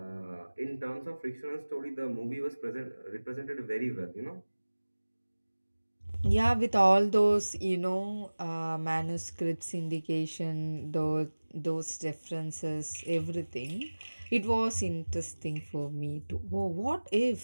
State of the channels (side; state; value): both; inverted; correlation -1.00